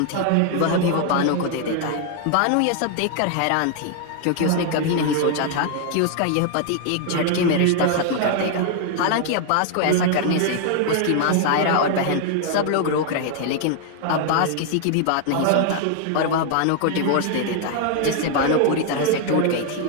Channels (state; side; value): different; both; correlation 0.00